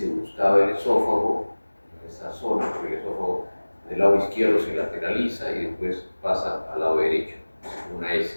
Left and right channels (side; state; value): both; inverted; correlation -1.00